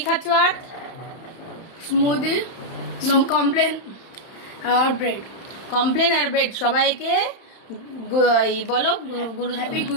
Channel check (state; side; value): late; right; 31 ms